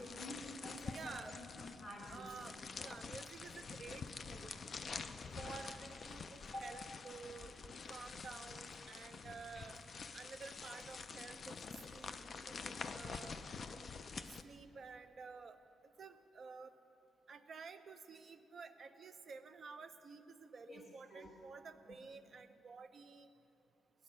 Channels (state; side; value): normal; both; correlation 0.81